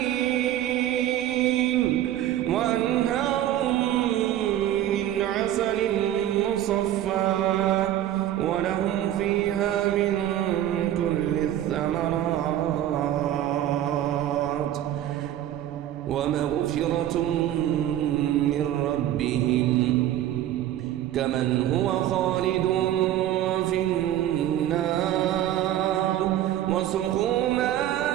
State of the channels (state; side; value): quieter; left; 12.3 dB